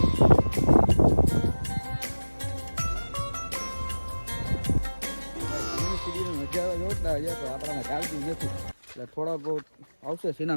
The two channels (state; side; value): inverted; both; correlation -1.00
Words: આપણામાં ચાલતું નથી એટલે થોડા બહુ આવશે